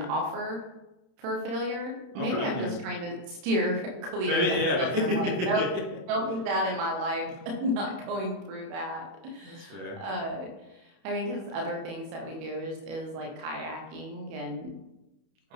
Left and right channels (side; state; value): left; late; 31 ms